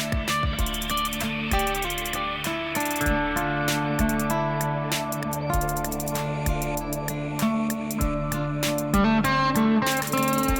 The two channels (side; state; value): both; identical; correlation 1.00